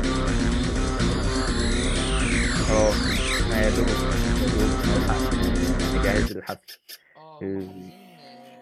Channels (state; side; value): identical; both; correlation 1.00